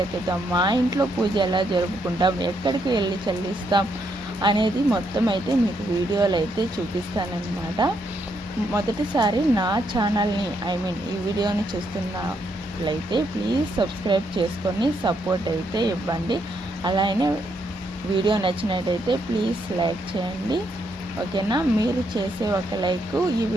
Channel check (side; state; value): both; normal; correlation 0.76